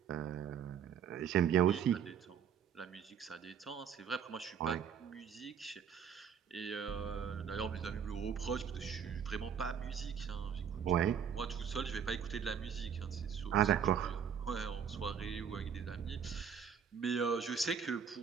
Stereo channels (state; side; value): quieter; left; 7.7 dB